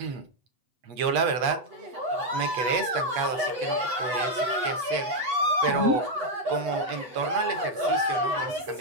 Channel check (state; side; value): late; left; 8.3 ms